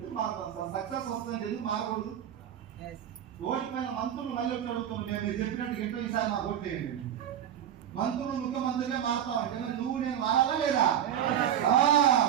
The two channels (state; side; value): quieter; left; 10.0 dB